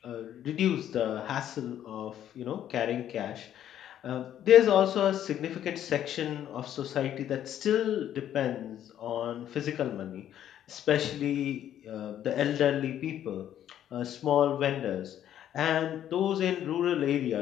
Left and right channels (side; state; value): right; quieter; 10.8 dB